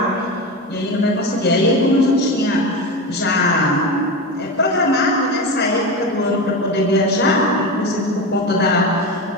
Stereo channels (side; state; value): both; normal; correlation 0.21